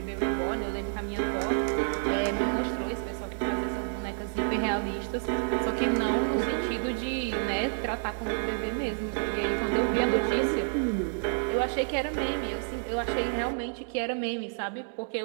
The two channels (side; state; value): left; silent; digital silence